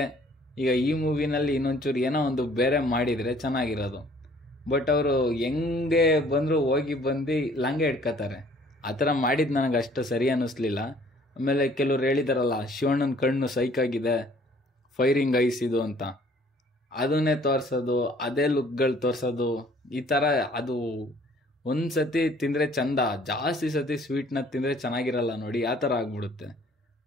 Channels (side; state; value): both; normal; correlation 0.57